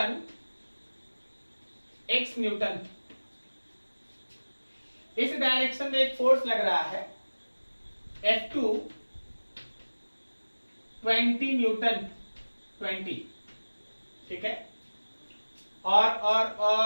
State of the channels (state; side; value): inverted; both; correlation -1.00